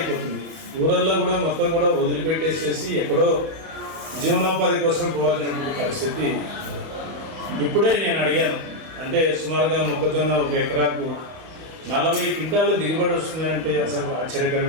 ఊరల్లో కూడా మొత్తం కూడా వదిలిపెట్టేసేసి ఎక్కడో జీవనోపాధి కోసం పోవాల్సినటువంటి పరిస్థితి. ఇప్పుడే నేను అడిగాను, అంటే సుమారుగా మొక్కజొన్న 1 ఎకరాకు 40 క్వింటాలు దిగుబడి వస్తుందంటే అసలు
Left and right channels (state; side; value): late; left; 31 ms